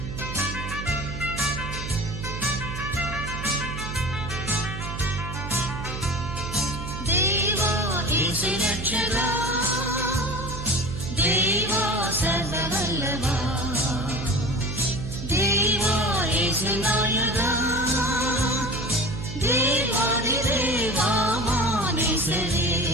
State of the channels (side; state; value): right; noise; hum, 7 dB below the sound